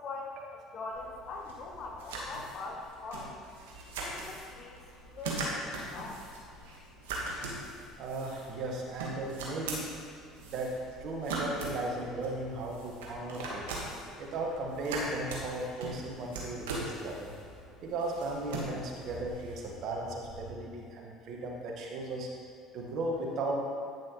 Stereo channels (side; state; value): both; normal; correlation 0.39